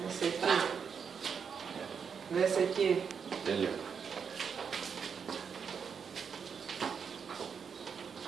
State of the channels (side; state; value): left; quieter; 6.5 dB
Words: Δες εκεί. Δες εκεί. Τέλειο.